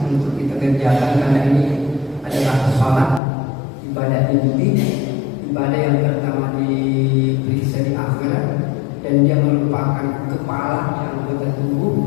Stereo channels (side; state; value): right; drops out; at 3.2 s